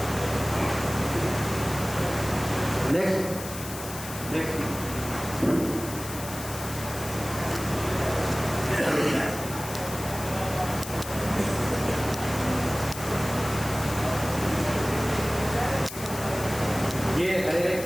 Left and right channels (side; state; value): left; noise; hiss, 10 dB below the sound